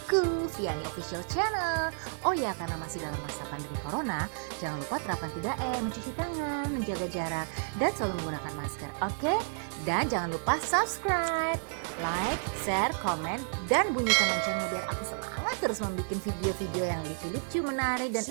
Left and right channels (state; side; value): silent; left; digital silence